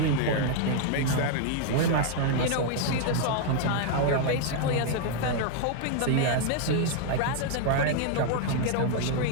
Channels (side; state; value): both; different; correlation 0.00